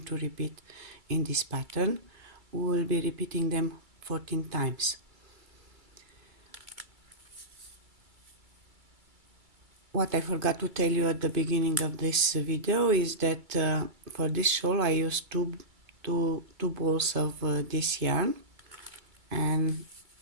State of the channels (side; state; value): left; late; 2.3 ms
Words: to repeat in this pattern. We will be repeating them 14 times. What I forgot to tell you at the beginning of this video is that for this shawl I used two balls of this yarn, and